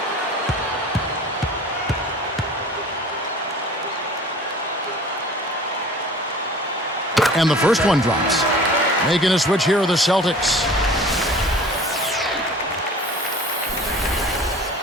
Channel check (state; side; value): normal; both; correlation 0.44